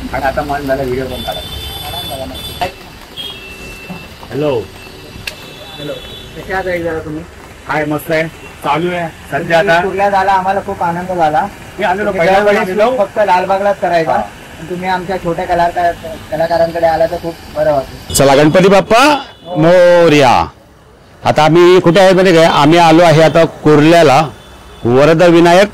आणि आता मन झालं व्हिडिओ पण काढायला. हॅलो हॅलो कशा आहात जरा तुम्ही? काय मस्त आहे चालू आहे सध्या. आता कुर्ला झाला आम्हाला खूप आनंद झाला. मी आलेलो पहिल्या फक्त लालबागलाच करायचा. तुम्ही आमच्या छोट्या कलाकारांकडे आला तर खूप बरं वाटतं. चला गणपती बाप्पा मोरया. आता आम्ही कुठे आहे म्हणजे काय आम्ही आलो आहे आता कुर्ल्याला वरद विनायक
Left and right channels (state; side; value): identical; both; correlation 1.00